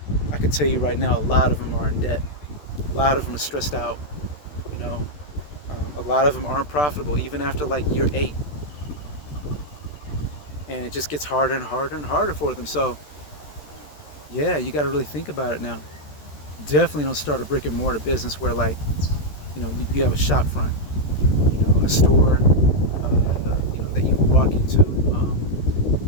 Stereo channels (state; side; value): late; right; 14 ms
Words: I can tell you right now, a lot of them are in debt. A lot of them are stressed out. A lot of them aren't profitable even after like year 8, and it just gets harder and harder and harder for them. So yeah, you got to really think about it now. Definitely don't start a brick and mortar business where, like, you have a shop front, a store, that you can walk into,